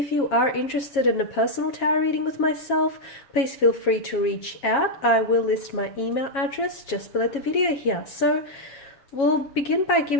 you are interested in a personal tarot reading with myself, please feel free to reach out. I will list my email address just below the video here. So we'll begin by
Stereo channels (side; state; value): right; late; 7.3 ms